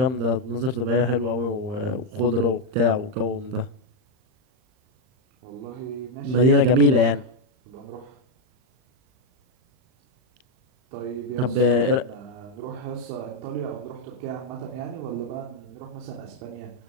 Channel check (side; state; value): left; late; 39 ms